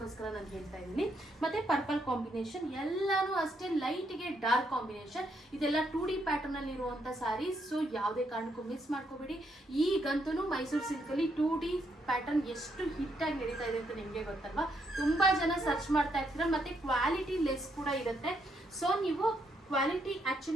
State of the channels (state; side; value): normal; both; correlation 0.76